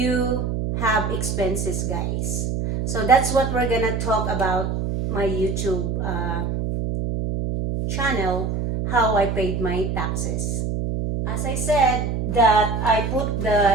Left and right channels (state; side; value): noise; right; hum, 1 dB below the sound